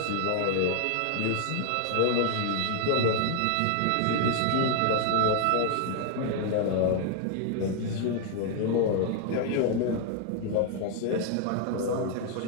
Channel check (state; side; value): different; both; correlation 0.00